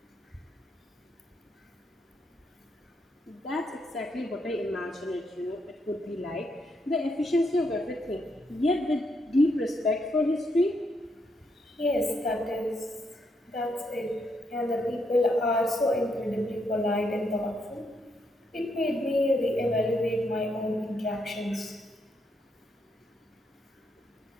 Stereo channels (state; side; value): normal; both; correlation 0.78